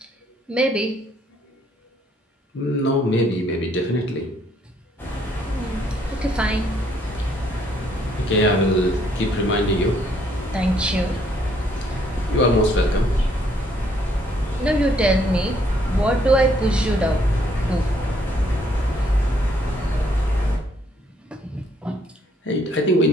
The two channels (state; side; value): normal; both; correlation 0.68